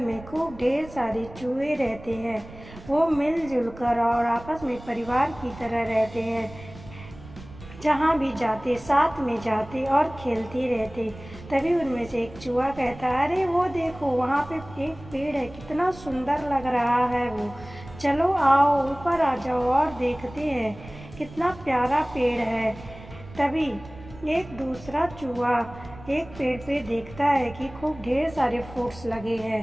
खूब ढेर सारे चूहे रहते हैं। वो मिलजुल कर और आपस में परिवार की तरह रहते हैं। जहाँ भी जाते साथ में जाते और खेलते रहते। तभी उनमें से एक चूहा कहता, अरे वो देखो, वहाँ पे एक पेड़ है, कितना सुंदर लग रहा है वो। चलो आओ ऊपर आ जाओ और देखते हैं कितना प्यारा पेड़ है। तभी एक दूसरा चूहा एक पेड़ पे देखता है कि खूब ढेर सारे फ्रूट्स लगे हैं।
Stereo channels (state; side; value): noise; right; rumble, 17 dB below the sound